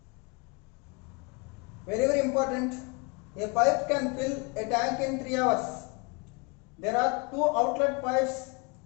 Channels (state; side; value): quieter; right; 31.0 dB